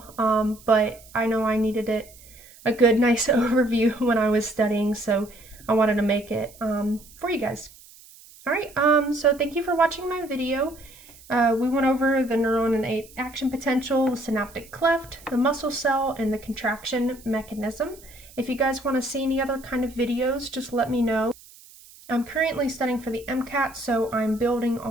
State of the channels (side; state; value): right; noise; hiss, 22 dB below the sound